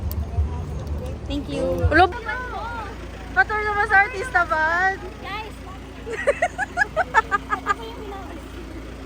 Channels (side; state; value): both; identical; correlation 1.00